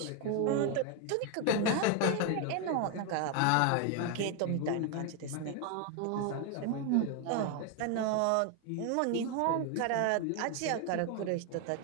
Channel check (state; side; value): different; both; correlation 0.01